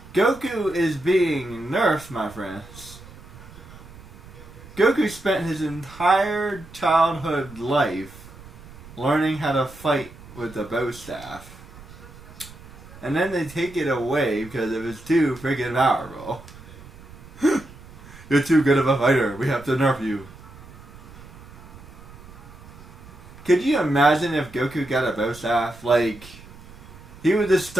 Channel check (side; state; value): right; noise; rumble, 18 dB below the sound